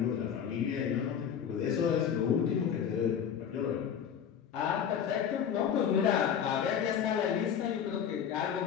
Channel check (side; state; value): right; quieter; 8.3 dB